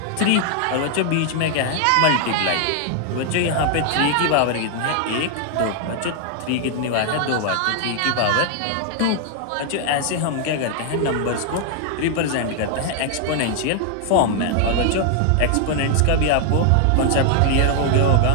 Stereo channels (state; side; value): different; both; correlation 0.00